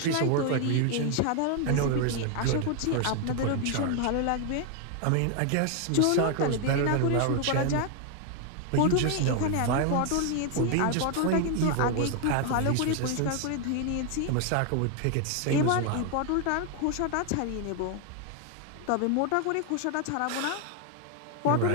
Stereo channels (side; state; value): both; different; correlation 0.01